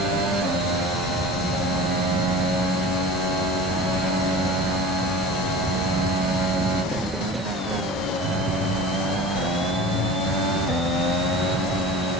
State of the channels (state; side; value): normal; both; correlation 0.38